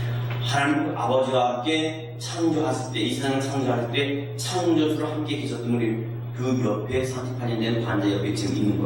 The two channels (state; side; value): identical; both; correlation 1.00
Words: 하나님 아버지와 함께 창조하실 때, 이 세상을 창조할 때 창조주로 함께 계셨던 우리 그 옆에 38년 된 환자 옆에 지금 있는